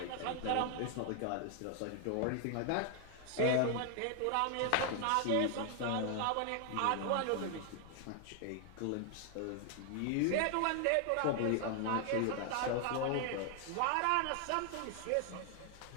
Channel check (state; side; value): different; both; correlation 0.00